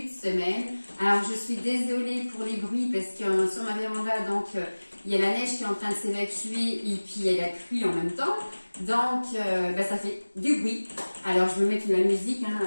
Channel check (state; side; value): inverted; both; correlation -1.00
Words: de semaine. Alors je suis désolée pour les bruits parce que sur ma véranda, donc il y a la neige qui est en train de s'évacuer et puis il y a la pluie en même temps. Donc ça fait du bruit. Alors je vais mettre de la musique